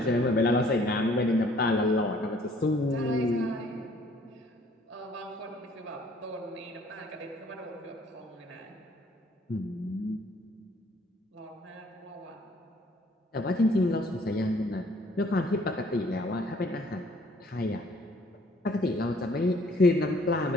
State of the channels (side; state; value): both; normal; correlation 0.60